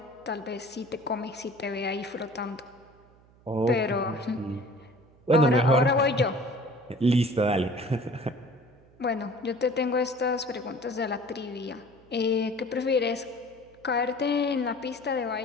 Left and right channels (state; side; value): noise; right; hum, 28 dB below the sound